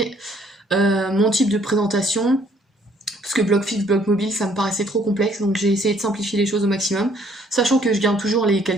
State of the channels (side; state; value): both; normal; correlation 0.63